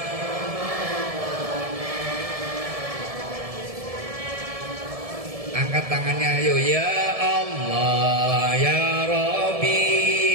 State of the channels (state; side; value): late; left; 1.7 ms